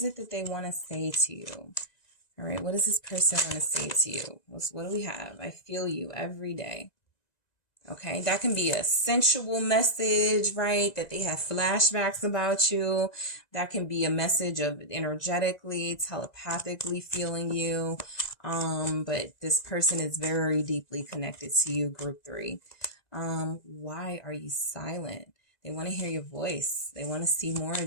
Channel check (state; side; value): late; right; 1.9 ms